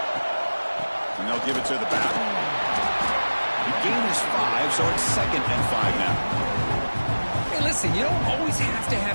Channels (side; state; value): both; inverted; correlation -1.00